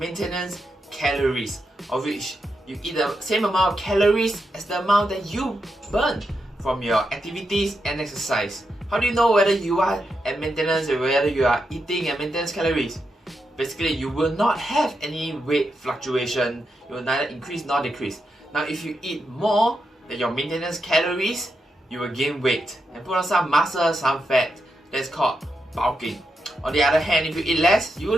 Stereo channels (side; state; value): both; normal; correlation 0.85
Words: calories, of which you eat the same amount of calories as the amount that you burn from your activities and exercise. How do you know whether you are at maintenance or whether you are eating at maintenance calories? Basically, you will not have any weight fluctuation. You will neither increase nor decrease. Now, if you eat more than your maintenance calories, you will gain weight and put on some muscle, some fat. That's called bulking. On the other hand, if you eat less, you